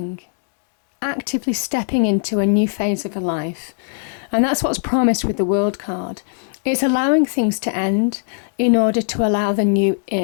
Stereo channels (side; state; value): right; silent; digital silence